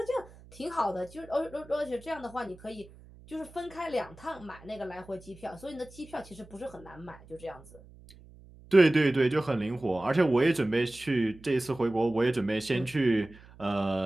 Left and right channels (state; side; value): noise; right; hum, 22 dB below the sound